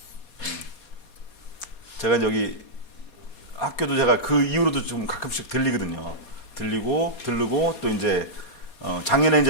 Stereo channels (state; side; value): late; right; 4.2 ms